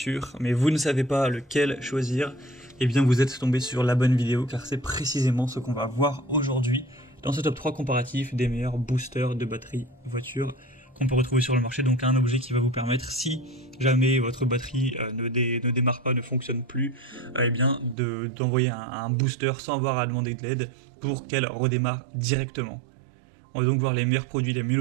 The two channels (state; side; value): drops out; left; at 17.9 s